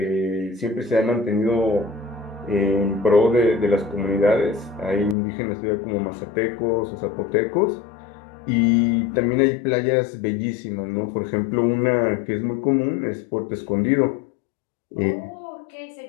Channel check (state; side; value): drops out; right; at 5.2 s